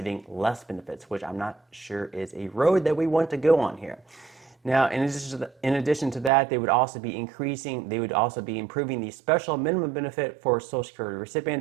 less benefits, which I'm not sure is a road that we want to go on here. Now, in addition to that, they would also be improving the special minimum benefit for Social Security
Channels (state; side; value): drops out; left; at 6.3 s